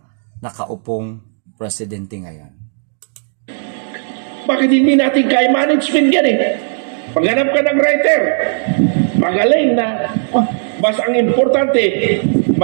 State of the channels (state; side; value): silent; left; digital silence